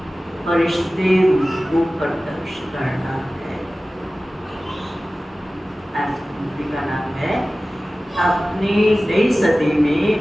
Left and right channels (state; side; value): normal; both; correlation 0.97